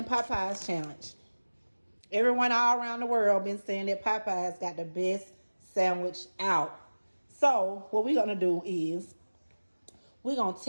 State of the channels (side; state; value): both; inverted; correlation -1.00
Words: Popeyes challenge. Everyone all around the world been saying that Popeyes got the best sandwich out. So what we're going to do is we're going to